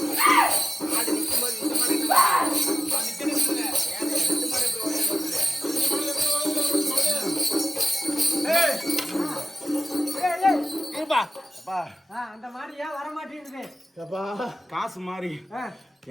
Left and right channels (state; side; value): normal; both; correlation 0.94